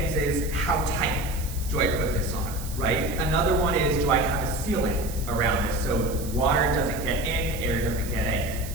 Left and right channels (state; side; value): noise; right; hiss, 13 dB below the sound